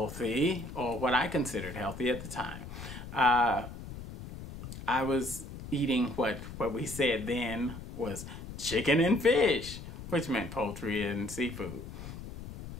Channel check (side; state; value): left; noise; rumble, 11 dB below the sound